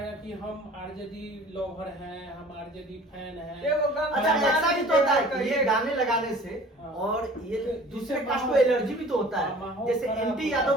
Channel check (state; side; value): normal; both; correlation 0.47